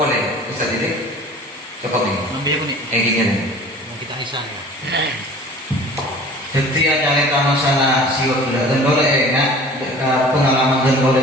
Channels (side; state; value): both; normal; correlation 0.45